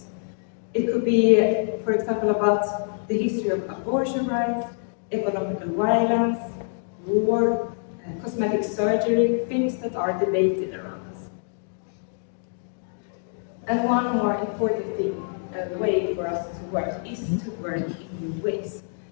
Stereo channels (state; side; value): silent; right; digital silence